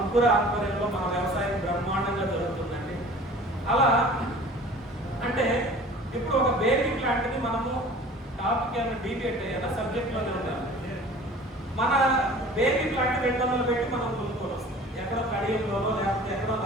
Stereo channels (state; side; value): normal; both; correlation 0.45